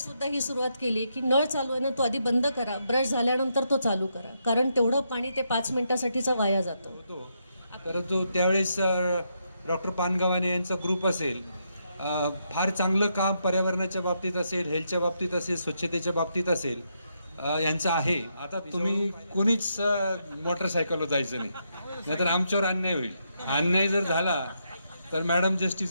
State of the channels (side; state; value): both; inverted; correlation -0.80